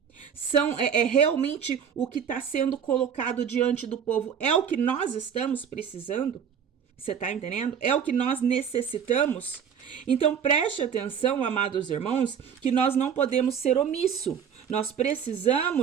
É realmente o que está sendo colocado diante do povo? É o que nós estamos precisando? Você tá entendendo? É o que nós necessitamos? Então preste atenção, amados irmãos, que nós não podemos ser omisso. Nós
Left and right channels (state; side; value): quieter; left; 7.7 dB